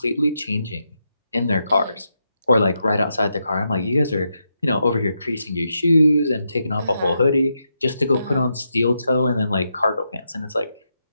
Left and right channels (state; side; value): inverted; both; correlation -0.84